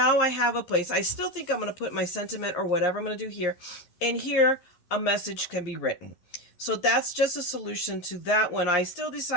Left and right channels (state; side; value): late; right; 11 ms